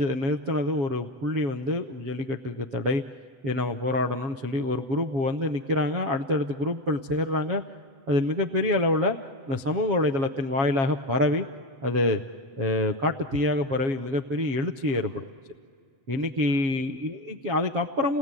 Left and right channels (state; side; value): late; left; 7.4 ms